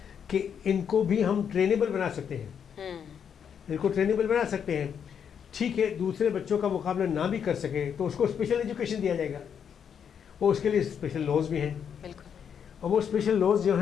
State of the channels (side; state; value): right; quieter; 7.8 dB